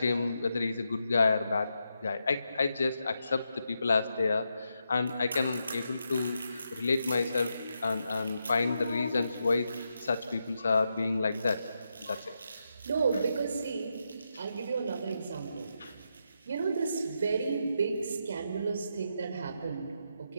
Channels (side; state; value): both; inverted; correlation -0.84